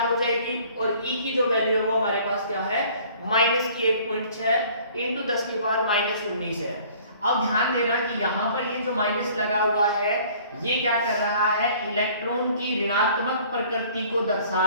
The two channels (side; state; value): both; inverted; correlation -0.53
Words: हो जाएगी, और E की जो वैल्यू है वो हमारे पास क्या है, माइनस की 1.6 इंटू 10 की पावर माइनस 19 है। अब ध्यान देना कि यहाँ पर ये जो माइनस लगा हुआ है ये क्या कर रहा है, इलेक्ट्रॉन की ऋणात्मक प्रकृति को